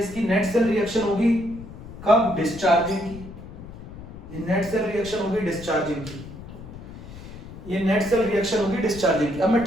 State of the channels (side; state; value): left; noise; rumble, 14 dB below the sound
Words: नेट सेल रिएक्शन होगी कब, डिस्चार्जिंग की। ये नेट सेल रिएक्शन होगी डिस्चार्जिंग की, ये नेट सेल रिएक्शन होगी डिस्चार्जिंग की। अब मैं